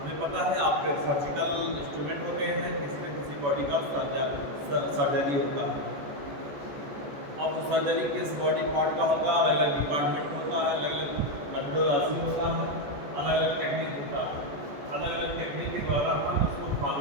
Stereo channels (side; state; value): left; late; 14 ms